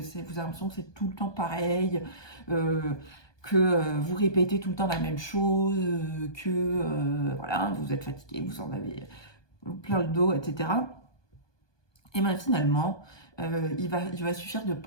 avez l'impression que c'est tout le temps pareil, que vous répétez tout le temps la même chose, voilà, vous êtes fatigué, vous en avez plein le dos, etc. Et bien finalement, il va suffire de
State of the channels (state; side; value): late; right; 1.2 ms